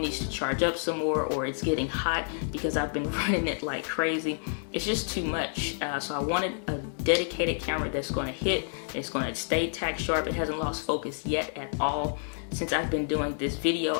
needs to charge up some more, or it's getting hot because I've been running it like crazy. It's just too much. So I wanted a dedicated camera that's going to hit, it's going to stay tack sharp. It hasn't lost focus yet at all. Since I've been doing this video,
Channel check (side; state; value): right; silent; 58 dB below the other